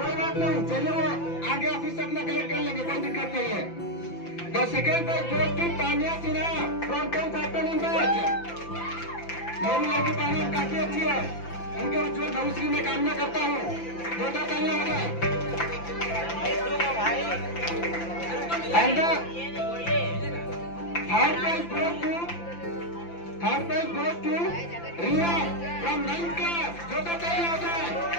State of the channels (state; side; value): late; right; 5.9 ms